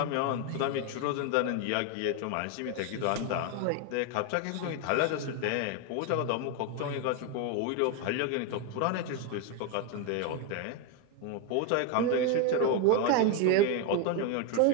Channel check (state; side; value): different; both; correlation 0.01